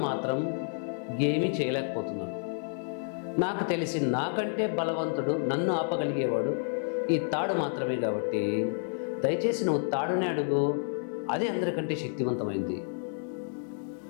మాత్రం ఏమీ చేయలేకపోతున్నాను. నాకు తెలిసి నాకంటే బలవంతుడు, నన్ను ఆపగలిగేవాడు ఈ తాడు మాత్రమే, కాబట్టి దయచేసి నువ్వు తాడునే అడుగు, అదే అందరికంటే శక్తివంతమైంది.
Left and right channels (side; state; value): right; silent; digital silence